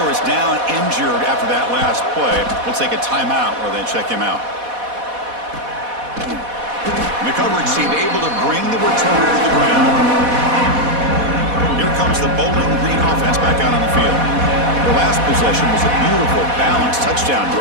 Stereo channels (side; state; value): left; late; 4.1 ms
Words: is down injured after that last play. We'll take a timeout while they check him out. And the coverage team able to bring the returner to the ground. Here comes the Bowling Green offense back out on the field. The last possession was a beautiful, balanced touchdown